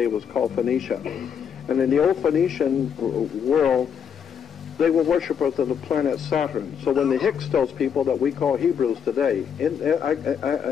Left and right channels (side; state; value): right; quieter; 7.6 dB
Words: was called Phoenicia. And in the old Phoenician world, they were worshippers of the planet Saturn. So when the Hyksos people that we call Hebrews today,